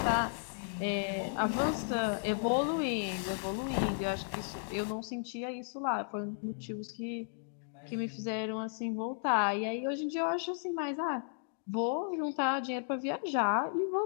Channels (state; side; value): silent; right; digital silence